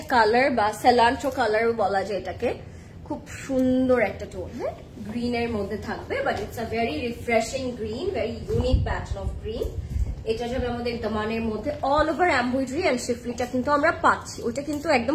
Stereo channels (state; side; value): identical; both; correlation 1.00